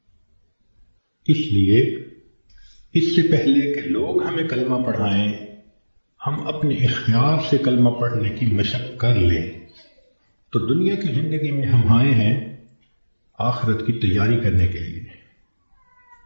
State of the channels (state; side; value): inverted; both; correlation -1.00